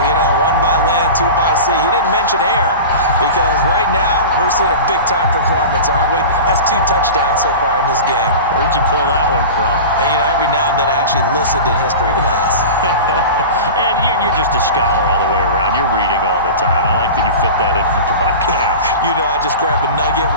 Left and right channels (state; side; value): inverted; both; correlation -0.31